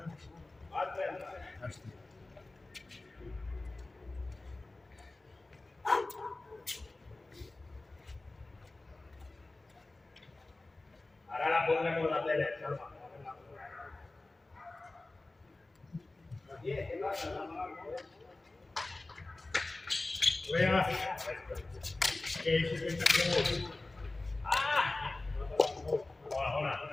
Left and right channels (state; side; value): quieter; right; 3.0 dB